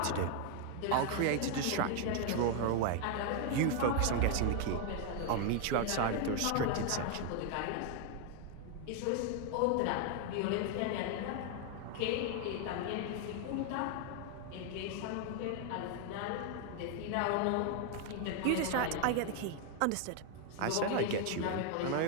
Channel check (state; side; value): different; both; correlation 0.00